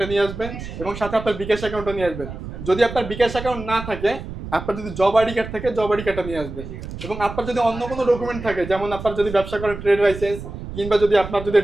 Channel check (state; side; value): noise; right; rumble, 10 dB below the sound